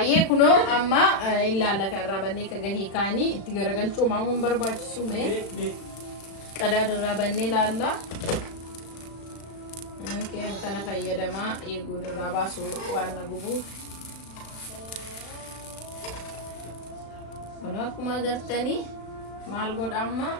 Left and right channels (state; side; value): late; right; 36 ms